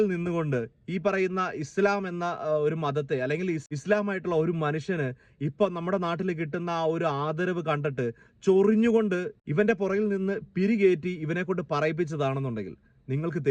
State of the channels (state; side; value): identical; both; correlation 1.00